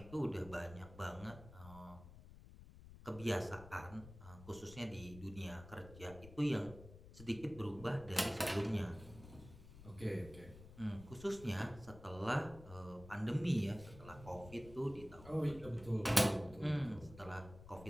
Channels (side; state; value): left; noise; rumble, 16 dB below the sound